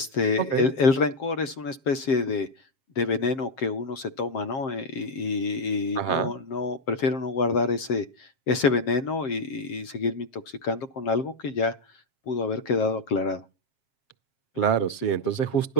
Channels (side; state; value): right; late; 7.5 ms